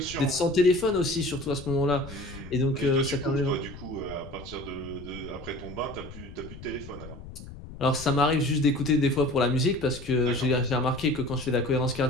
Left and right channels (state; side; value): noise; left; rumble, 14 dB below the sound